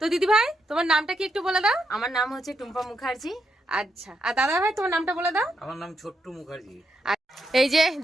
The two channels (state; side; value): normal; both; correlation 0.81